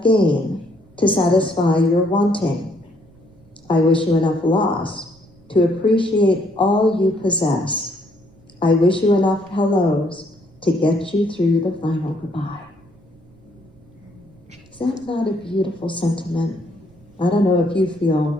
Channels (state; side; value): noise; right; rumble, 28 dB below the sound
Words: gain to satisfy your wanting. I wish you enough loss to appreciate all you possess. I wish you enough hellos to get you through the final goodbye. Is that not a beautiful sentiment? I don't know if you